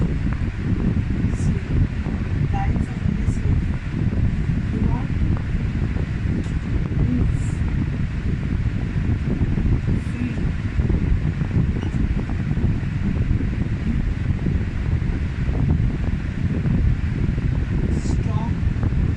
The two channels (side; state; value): both; identical; correlation 1.00